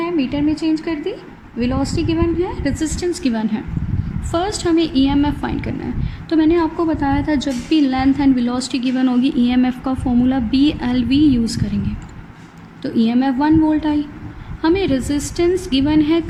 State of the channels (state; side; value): identical; both; correlation 1.00